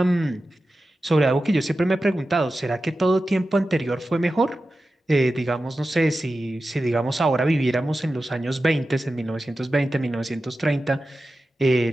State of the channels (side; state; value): both; normal; correlation 0.93